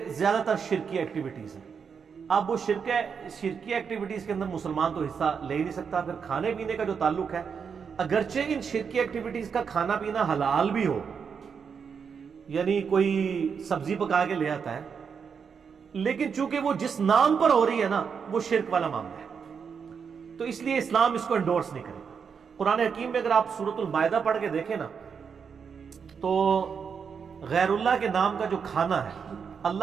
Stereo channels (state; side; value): quieter; left; 6.4 dB